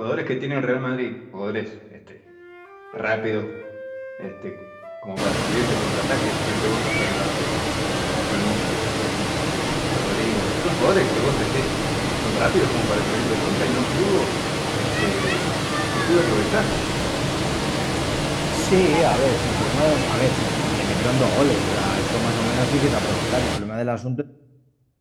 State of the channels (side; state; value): both; identical; correlation 1.00